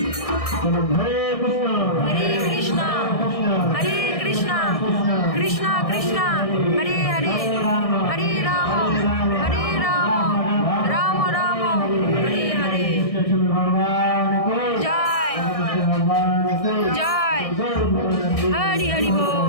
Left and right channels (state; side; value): late; right; 1.6 ms